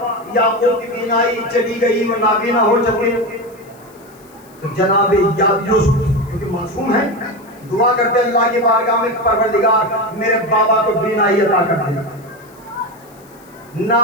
یعقوب کی بینائی چلی گئی، وہ نابینا ہو چکے، تو جناب یوسف کیونکہ معصوم ہے، دعا کرتے اللہ کی بارگاہ میں، پروردگار میرے بابا کو بینائی عطا کر دے۔ نہ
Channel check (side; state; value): left; noise; hiss, 28 dB below the sound